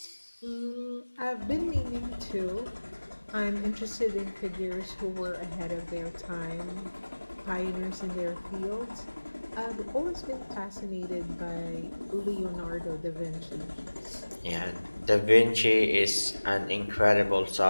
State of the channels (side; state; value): both; inverted; correlation -1.00